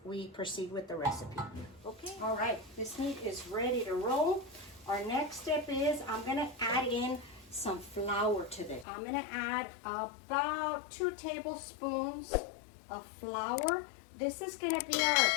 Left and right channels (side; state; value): right; drops out; at 8.8 s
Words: we proceed with the recipe. Okay, all right, this meat is ready to roll. Our next step is I'm gonna add in some flour to this. I'm gonna add about 2 tablespoons of flour. This is gonna be our